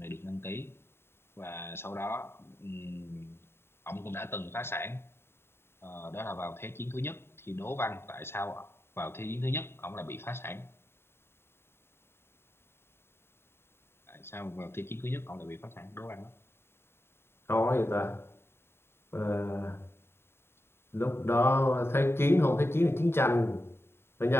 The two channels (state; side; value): late; right; 0.11 ms